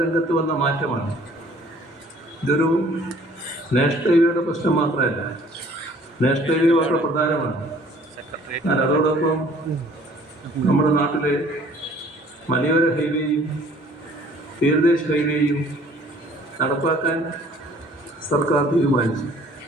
രംഗത്ത് വന്ന മാറ്റമാണ്. ഇതൊരു നാഷണൽ ഹൈവേയുടെ പ്രശ്നം മാത്രമല്ല, നാഷണൽ ഹൈവേ വളരെ പ്രധാനമാണ്. എന്നാൽ അതോടൊപ്പം നമ്മുടെ നാട്ടിലെ മലയോര ഹൈവേയും തീരദേശ ഹൈവേയും നടപ്പാക്കാൻ സർക്കാർ തീരുമാനിച്ചു.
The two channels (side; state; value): both; normal; correlation 0.55